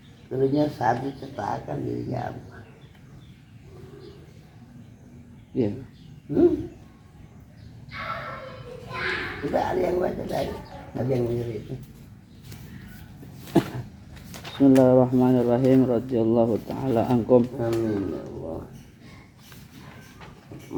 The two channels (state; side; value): identical; both; correlation 1.00